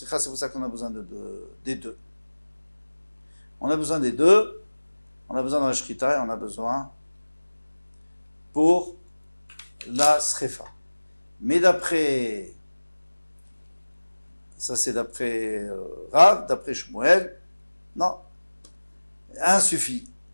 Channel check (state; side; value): inverted; both; correlation -1.00